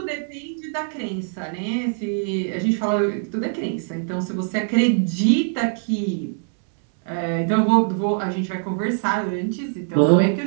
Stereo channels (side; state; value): left; silent; digital silence